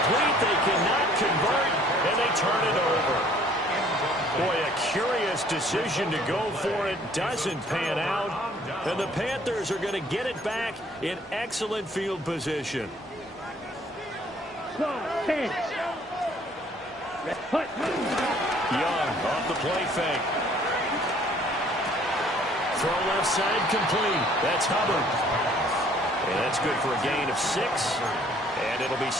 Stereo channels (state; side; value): normal; both; correlation 0.58